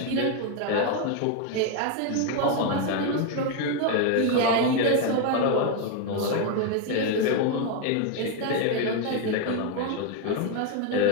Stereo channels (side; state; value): both; different; correlation 0.01